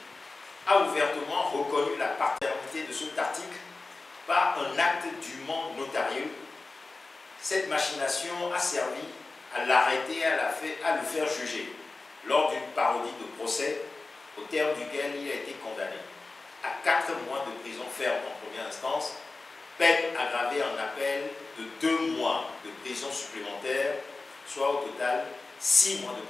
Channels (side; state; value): right; quieter; 3.6 dB